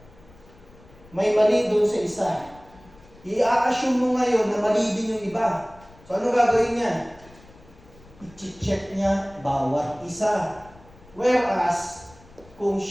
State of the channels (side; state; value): left; noise; rumble, 25 dB below the sound